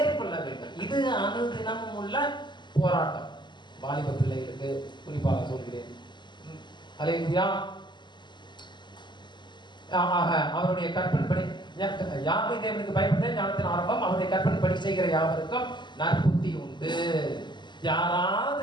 வேண்டும். இது அனுதினமும் உள்ள போராட்டம். வாலிப பிள்ளைகளுக்கு குறிப்பாக சொல்கிறேன். அல்லேலூயா. அவருடைய கற்பனைப்படி யாவை தேவனுக்கு பயப்பட்டு ஞானத்தின் ஆரம்பம், அவருடைய கற்பனைப்படி செய்கிற யாவருக்கும் நற்புத்தி உண்டு.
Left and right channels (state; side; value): late; right; 0.22 ms